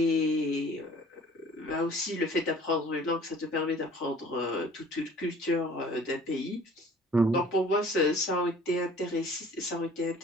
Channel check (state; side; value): normal; both; correlation 0.50